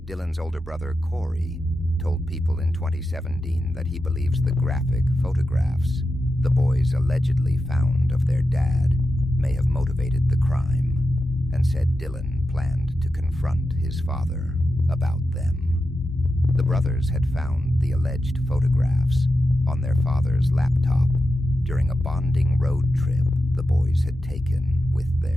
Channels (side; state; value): both; normal; correlation 0.90